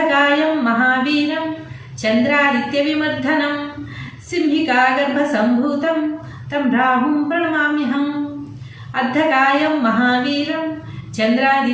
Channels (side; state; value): both; identical; correlation 1.00